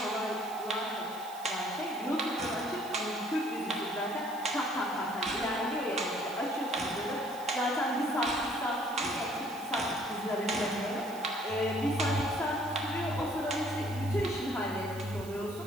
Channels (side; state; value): right; noise; hiss, 18 dB below the sound